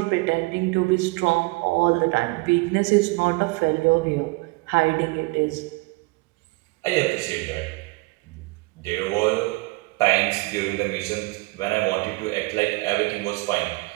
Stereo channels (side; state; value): left; quieter; 25.3 dB